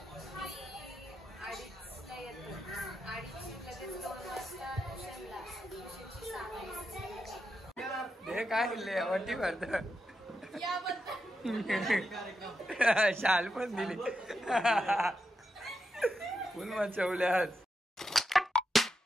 हे काय लेवटी भरत शाल पण दिली फुल मचवल्यात.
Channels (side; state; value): both; normal; correlation 0.86